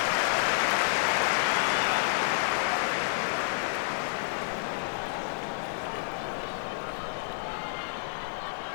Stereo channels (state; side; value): silent; right; digital silence